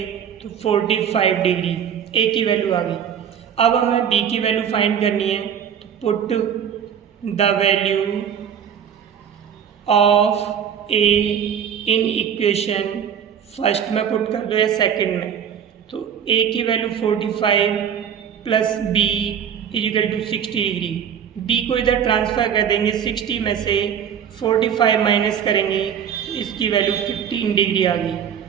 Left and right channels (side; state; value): left; quieter; 8.3 dB